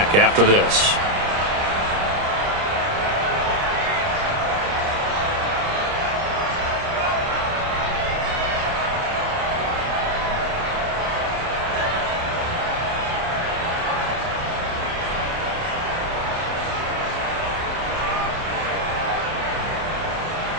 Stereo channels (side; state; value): left; late; 30 ms